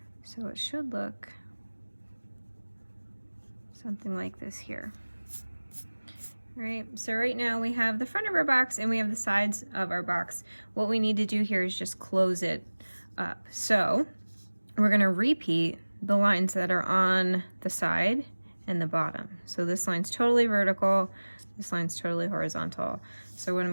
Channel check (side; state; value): both; inverted; correlation -1.00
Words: So it should look something like this here. All right, so right now we have the front of our box and we have the sides of our box. What we need to do here is just close it up. So we're going to repeat the lines that are on the side and the bottom. So this line's totally vertical, this line's totally horizontal. So what I'm